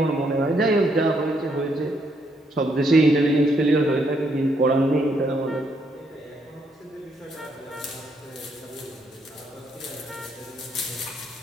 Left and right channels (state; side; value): normal; both; correlation 0.74